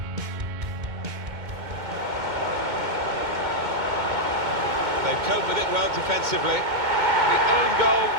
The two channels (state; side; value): late; left; 2.2 ms